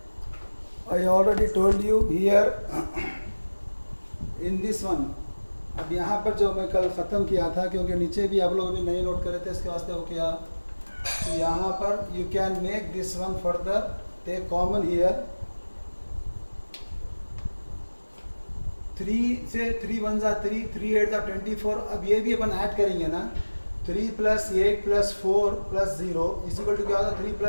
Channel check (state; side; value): inverted; both; correlation -1.00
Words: I already told you here in this one. अब यहाँ पर जो मैं कल ख़त्म किया था, क्योंकि नीचे भी आप लोग अभी नहीं नोट करे थे, इसके वास्ते वो किया। तो यहाँ पर you can make this one further, take common here 3 से 3 1 जा 3, 3 8 जा 24। अब ये भी अपन ऐड करेंगे ना, 3 + 8 + 4 + 0 इक्वल टू क्या होता है? 3